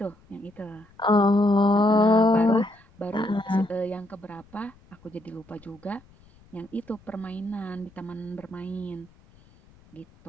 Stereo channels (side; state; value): left; noise; rumble, 28 dB below the sound